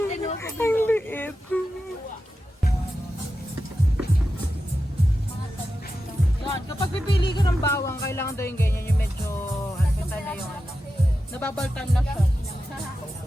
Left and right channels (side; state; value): both; normal; correlation 0.91